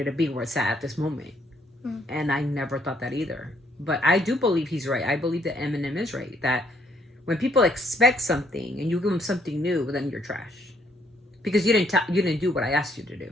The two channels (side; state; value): both; normal; correlation 0.69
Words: to be where it's at this moment. And I never thought that either. But I do believe he's right. I believe that Eminem is right. That when people expect something and you give them something new, then you're trash. Because you didn't do what I asked you to do.